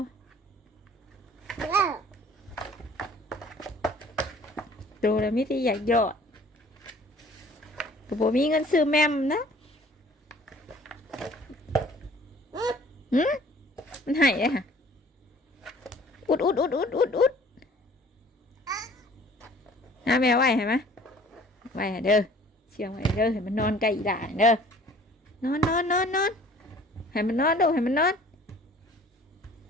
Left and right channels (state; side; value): normal; both; correlation 0.52